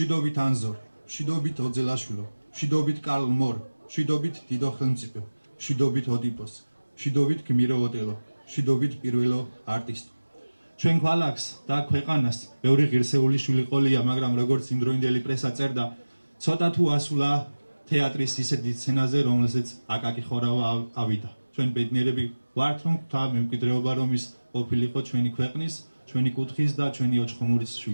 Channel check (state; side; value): inverted; both; correlation -1.00